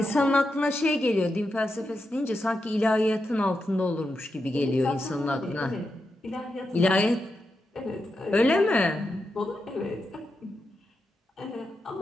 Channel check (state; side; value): normal; both; correlation 0.87